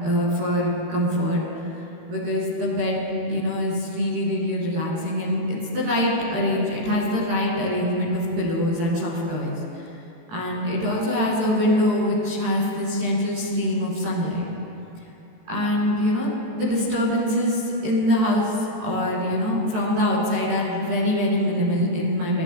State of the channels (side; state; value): left; late; 18 ms